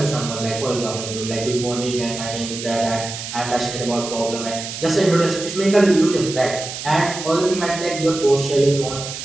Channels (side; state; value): right; noise; hiss, 8 dB below the sound